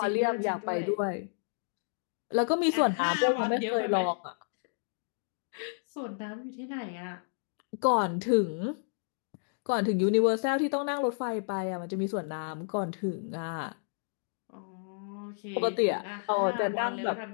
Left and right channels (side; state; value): right; silent; digital silence